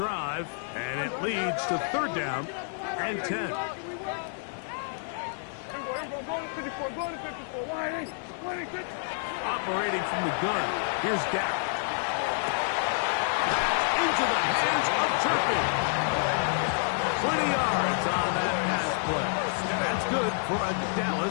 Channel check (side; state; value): right; silent; digital silence